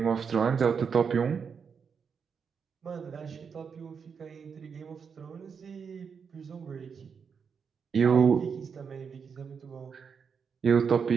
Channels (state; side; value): quieter; left; 6.3 dB